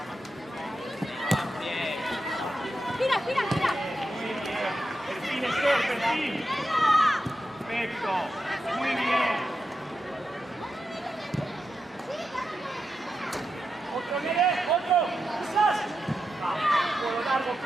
Perfil. Perfecto. Muy bien. Otro. Quizás. Por lo largo,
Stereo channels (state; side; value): normal; both; correlation 0.88